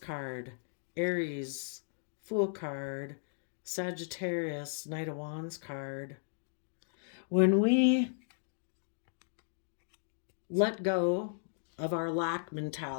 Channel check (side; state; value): right; silent; digital silence